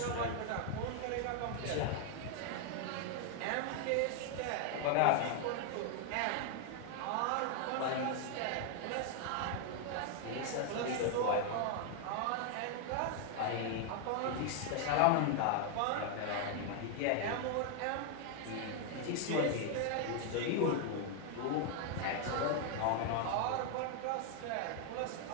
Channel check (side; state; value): both; different; correlation 0.00